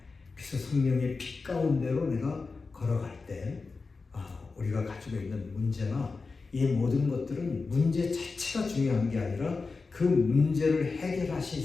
그래서 성령의 빛 가운데로 내가 걸어갈 때 우리가 가지고 있는 문제나 이 모든 것들은 문제 자체가 중요한 게 아니라 그 문제를 해결하실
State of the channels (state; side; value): quieter; right; 4.2 dB